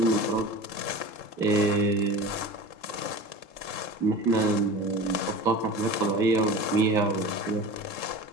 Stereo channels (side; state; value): right; late; 3.7 ms